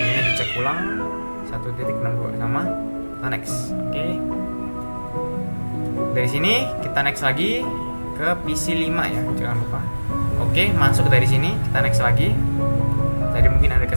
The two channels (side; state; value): both; inverted; correlation -1.00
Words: dicek ulang 1.62 sama. Kita next. Oke. Dari sini kita next lagi ke PC 5 ya, jangan lupa. Oke, masuk dari sini, kita next lagi. Tadi mungkin ada